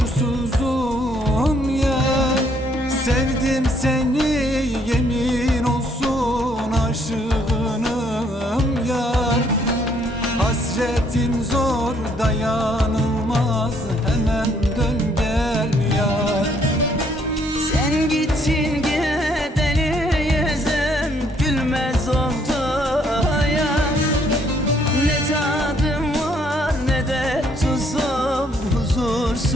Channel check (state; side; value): normal; both; correlation 0.67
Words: ya. Sevdim seni yemin olsun aşığınım yar. Hasretin zor dayanılmaz, hemen dön gel yar. Sen gittin gideli yüzüm gülmez oldu ya. Ne tadım var ne de tuzum,